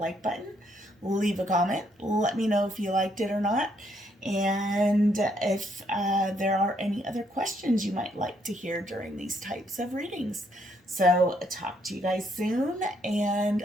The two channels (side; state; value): both; normal; correlation 0.72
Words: button, leave a comment, let me know if you liked it or not, and if there are any other questions you might like to hear during these types of readings. So talk to you guys soon, and